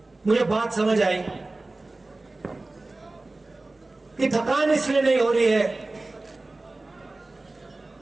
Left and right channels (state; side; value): quieter; left; 3.1 dB